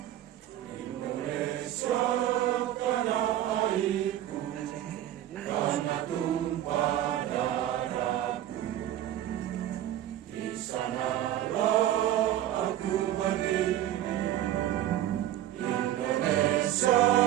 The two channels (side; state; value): left; quieter; 12.6 dB